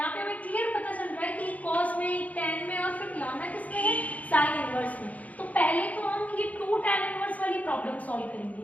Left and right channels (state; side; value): late; right; 0.072 ms